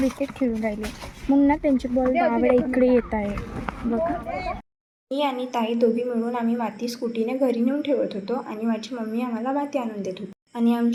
खेळून राहिले, मग ना त्यांची बॉल बाबडे इकडे येत आहे. बघा, मी आणि ताई दोघी मिळून आम्ही माती स्कूटीने घरी नेऊन ठेवत होतो आणि माझी मम्मी आम्हाला माती आणून देत होती. आणि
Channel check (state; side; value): identical; both; correlation 1.00